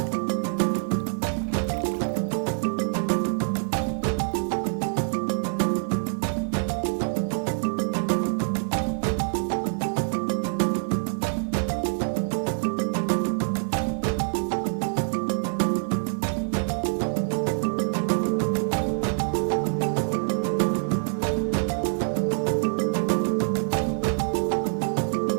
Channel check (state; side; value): silent; left; 61 dB below the other